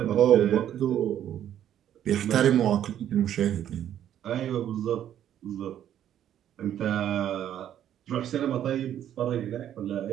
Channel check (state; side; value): quieter; left; 10.7 dB